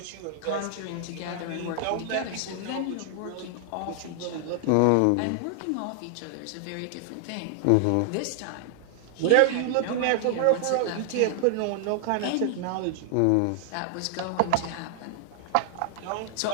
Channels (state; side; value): different; both; correlation 0.00